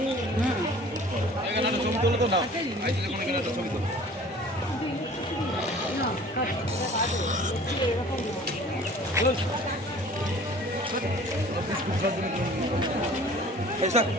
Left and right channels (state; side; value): normal; both; correlation 0.47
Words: এখানে একটা ছবি তোলো তো না আইসলে কোনো এখানে একটা ছবি তোলো এই স্যার